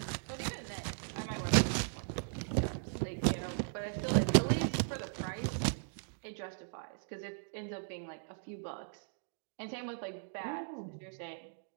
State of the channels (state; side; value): silent; left; digital silence